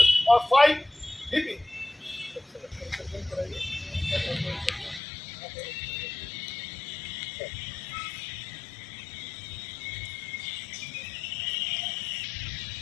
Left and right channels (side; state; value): right; drops out; at 5.0 s